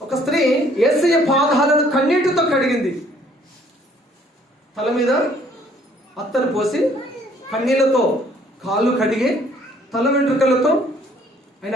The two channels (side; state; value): both; normal; correlation 0.61